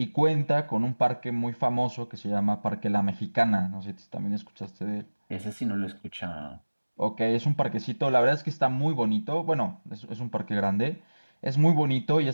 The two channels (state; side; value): inverted; both; correlation -1.00